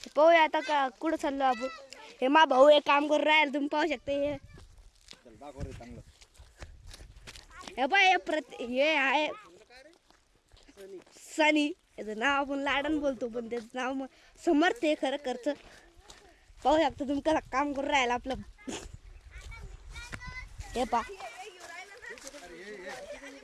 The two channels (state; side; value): identical; both; correlation 1.00